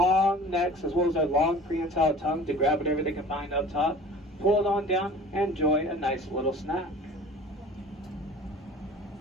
necks as well as their long prehensile tongue to grab whatever they can find up top, pull it on down, and enjoy a nice little snack.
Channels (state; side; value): normal; both; correlation 0.43